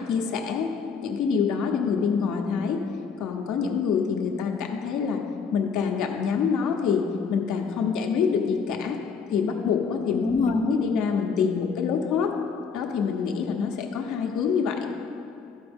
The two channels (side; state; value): right; quieter; 5.7 dB